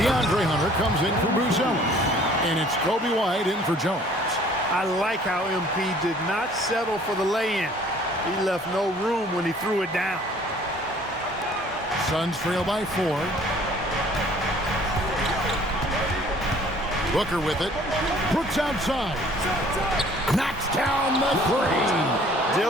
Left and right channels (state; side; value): normal; both; correlation 0.55